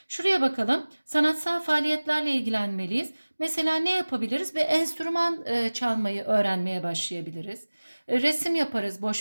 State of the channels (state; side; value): inverted; both; correlation -1.00